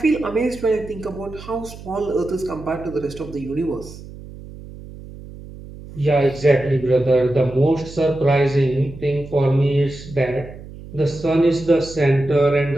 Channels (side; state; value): right; noise; hum, 15 dB below the sound